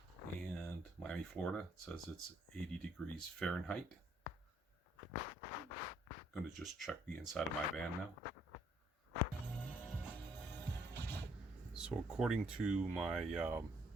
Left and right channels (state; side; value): normal; both; correlation 0.68